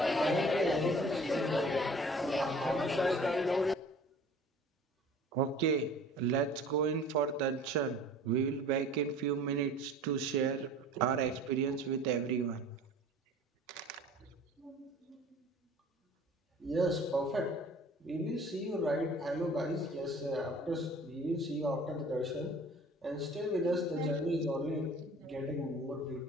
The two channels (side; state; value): both; normal; correlation 0.46